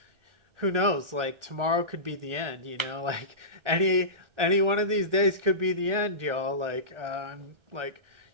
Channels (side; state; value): left; late; 1.3 ms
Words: who knows? Like tomorrow could be the end, you know. Like any one of these days could be the end, y'all. Like like,